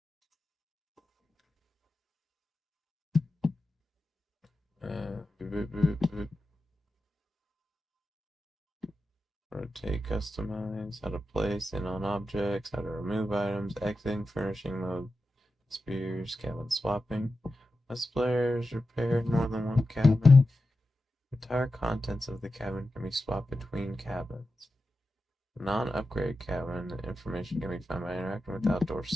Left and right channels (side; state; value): both; normal; correlation 0.91